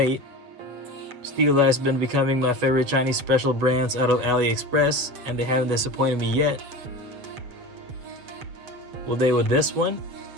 Steeldive has been becoming my favorite Chinese special brands out of AliExpress, and they haven't disappointed me yet. Will they with this one?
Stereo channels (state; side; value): late; left; 7.8 ms